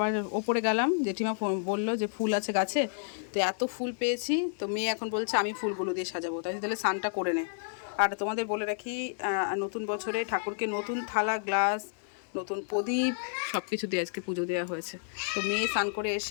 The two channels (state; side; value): silent; right; digital silence